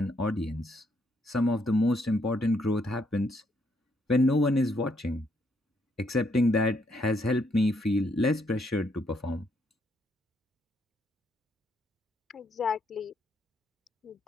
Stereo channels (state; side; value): normal; both; correlation 0.73